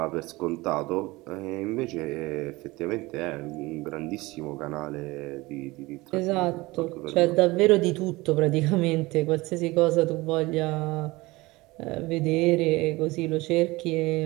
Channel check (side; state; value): left; quieter; 21.3 dB